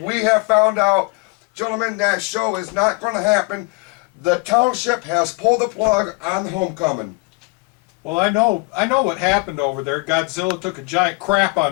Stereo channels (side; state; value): right; quieter; 28.1 dB